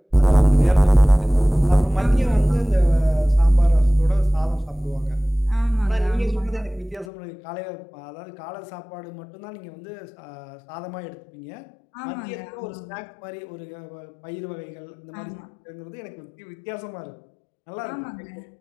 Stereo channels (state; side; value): drops out; right; at 7.1 s